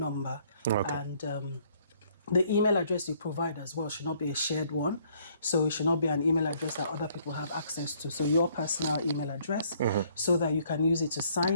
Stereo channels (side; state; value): both; inverted; correlation -0.64